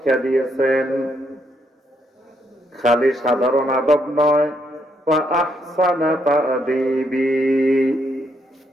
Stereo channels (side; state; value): both; normal; correlation 0.75